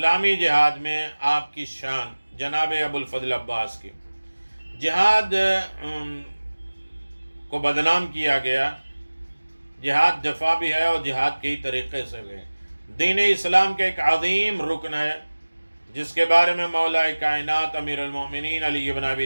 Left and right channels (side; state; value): both; inverted; correlation -1.00